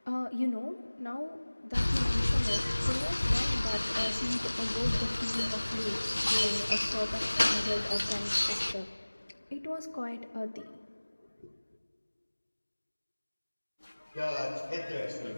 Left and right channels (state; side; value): inverted; both; correlation -1.00